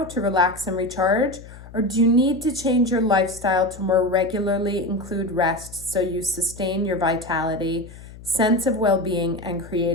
to relax and recharge? Or do you need to change your lifestyle to more regularly include rest so you sustain your vitality, sense of well-being, and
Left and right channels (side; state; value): left; noise; hum, 17 dB below the sound